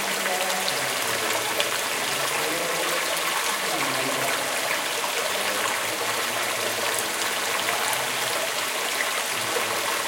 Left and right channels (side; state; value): both; identical; correlation 1.00